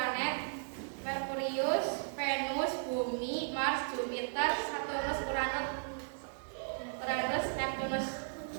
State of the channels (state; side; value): silent; left; digital silence